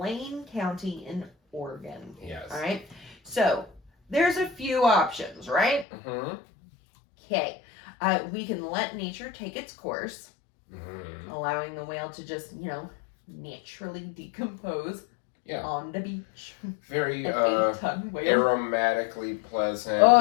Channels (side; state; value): right; drops out; at 5.9 s